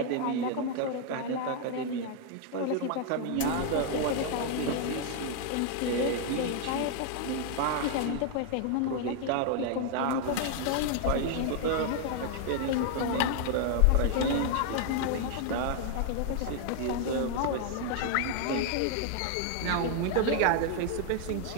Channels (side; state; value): both; different; correlation 0.00